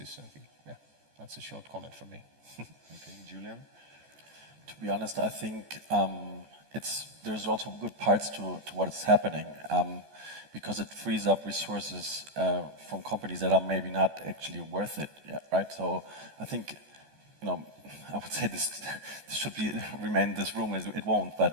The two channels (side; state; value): left; late; 14 ms